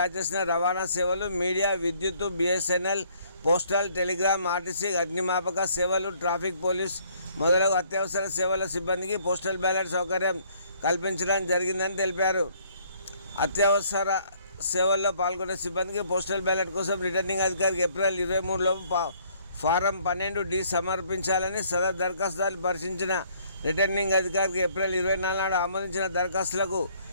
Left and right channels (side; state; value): both; inverted; correlation -0.63